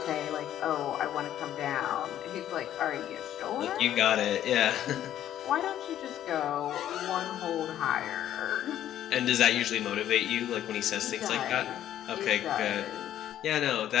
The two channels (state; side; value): quieter; right; 11.6 dB